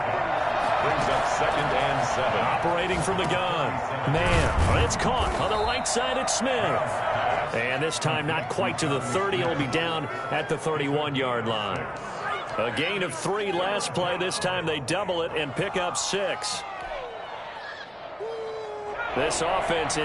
Brings up 2nd and 7. Operating from the gun. Man, it's caught on the right side at Smith. And this time not quite to the 30. It'll be down at the 31-yard line. A gain of 3 last play. This time they double it and pick up 6. This offense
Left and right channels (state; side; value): identical; both; correlation 1.00